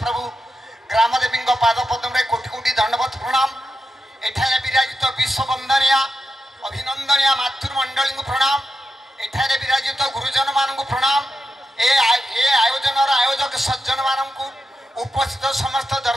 ग्रामदेवी पाद पद्मरे कोटि कोटि दंडवत प्रणाम। एठारे विराजित विश्ववंदनीय अभिनंदनीय मातृमंडली प्रणाम। एठारे विराजित गुरुजन मानक प्रणाम। ए आयोजन आयोजक सज्जन मानक उपस्थित समस्त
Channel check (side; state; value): both; normal; correlation 0.89